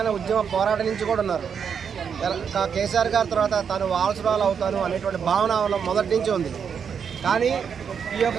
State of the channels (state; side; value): quieter; left; 7.0 dB